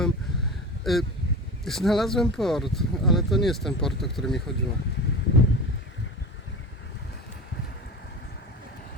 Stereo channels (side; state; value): both; normal; correlation 0.31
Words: Znalazłem port, ale to nie jest ten port, o który mi chodziło.